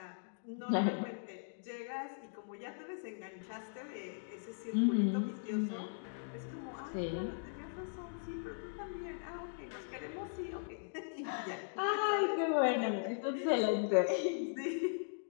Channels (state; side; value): silent; right; digital silence